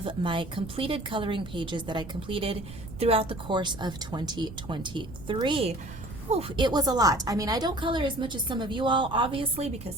my completed coloring pages that I completed throughout the course of 2023. Oof, it was a lot. I mean, I don't color as much as some of you all, obviously, because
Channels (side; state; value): right; noise; rumble, 13 dB below the sound